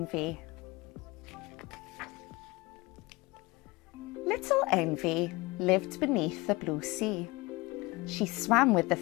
Little Envy lived beneath the blue sea. She swam with the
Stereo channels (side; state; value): right; quieter; 23.0 dB